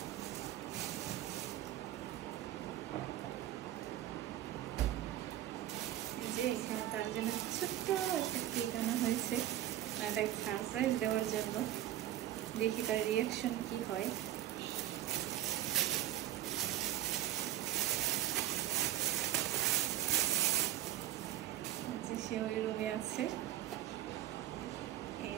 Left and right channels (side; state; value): left; quieter; 12.9 dB